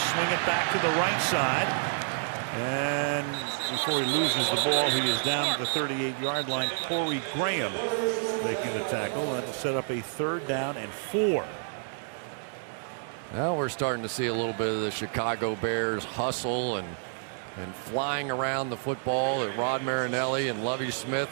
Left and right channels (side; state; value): left; silent; 59 dB below the other